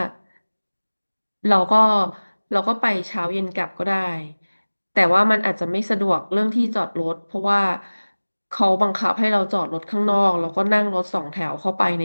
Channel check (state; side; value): inverted; both; correlation -1.00